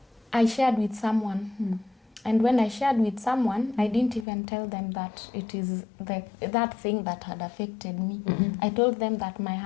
I shared with someone. And when I shared with someone, I didn't even tell them that it is that thing that had affected me. I told them that my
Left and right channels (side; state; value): right; drops out; at 4.2 s